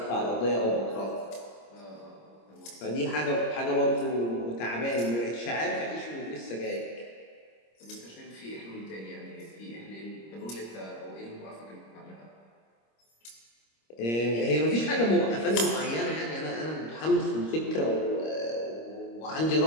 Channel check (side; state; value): right; late; 26 ms